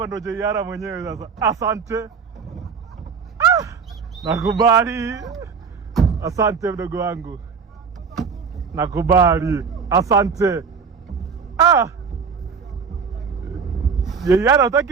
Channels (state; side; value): quieter; left; 5.8 dB